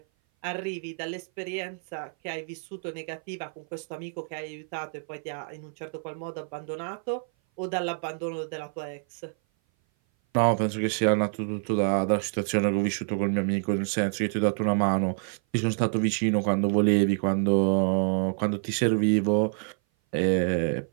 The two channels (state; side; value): silent; left; 57 dB below the other